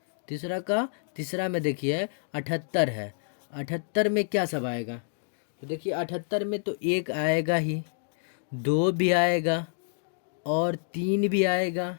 78 है। 78 में क्या सब आएगा? तो देखिए, 78 में तो एक आएगा ही, दो भी आएगा, और तीन भी आएगा।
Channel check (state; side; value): silent; right; digital silence